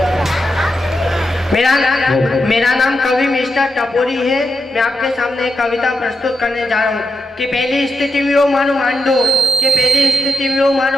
मेरा नाम कवि मिस्टर टपोरी है। मैं आपके सामने एक कविता प्रस्तुत करने जा रहा हूँ कि पहली स्थिति में मानो मांडो कि पहली स्थिति में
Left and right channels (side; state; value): both; normal; correlation 0.85